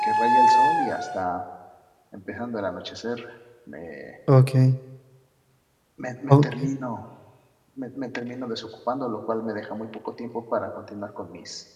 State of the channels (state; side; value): identical; both; correlation 1.00